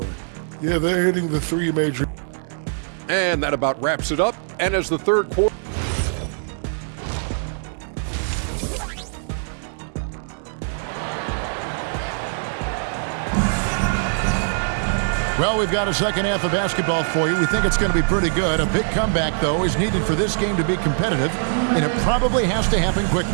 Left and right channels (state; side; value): silent; left; 60 dB below the other